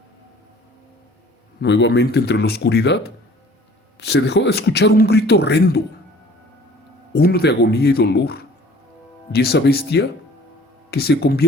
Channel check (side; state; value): both; normal; correlation 0.51